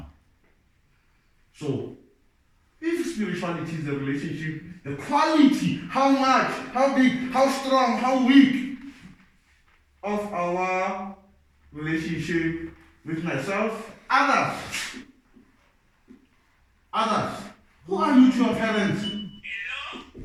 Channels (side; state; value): both; identical; correlation 1.00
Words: So if spirituality is a relationship, the quality, how much, how big, how strong, how weak of our relationship with myself, others. Who are you to your parents?